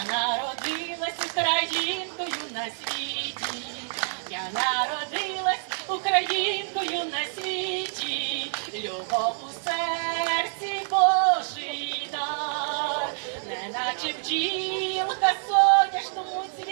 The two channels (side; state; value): left; silent; 58 dB below the other